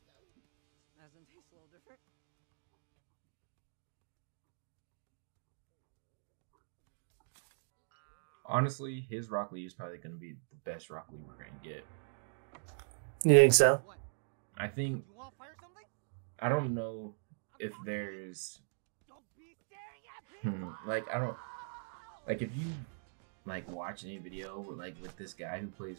Doesn't taste a little different. Honestly, his Rock Lee is probably going to be the best Rock Lee we're going to get. You think so? What? I think, You want to fire something? I don't know if there's, Don't be staring at me. like, I don't, like, if you, like, watch any video, like, with this guy who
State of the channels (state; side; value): silent; left; digital silence